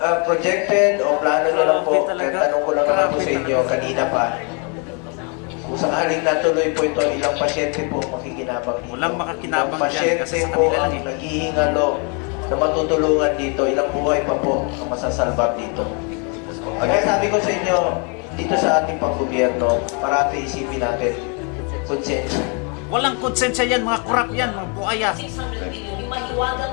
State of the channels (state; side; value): quieter; right; 36.0 dB